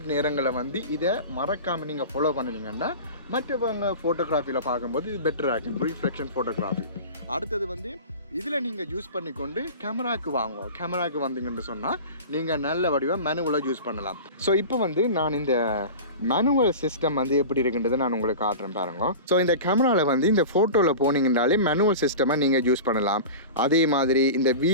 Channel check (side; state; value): both; inverted; correlation -0.33